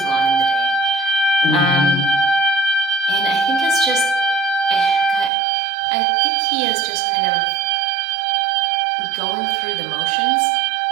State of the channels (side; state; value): left; drops out; at 5.3 s